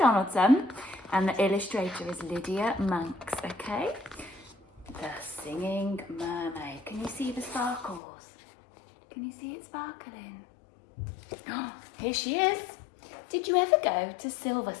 and the illustrator is Lydia Monks, okay? The Singing Mermaid. Can you see the sparkles? Can you see it sparkling? Oh, here she is. Did you ever go to Silver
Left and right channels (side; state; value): right; drops out; at 8.0 s